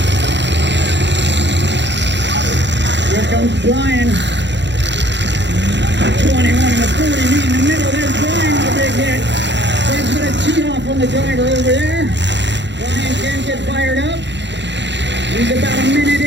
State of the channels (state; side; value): late; left; 0.52 ms